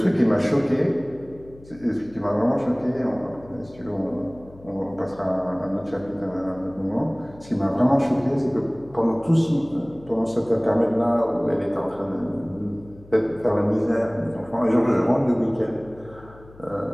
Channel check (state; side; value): noise; left; hum, 22 dB below the sound